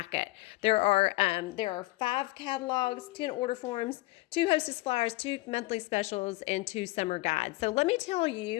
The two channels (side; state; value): right; quieter; 20.8 dB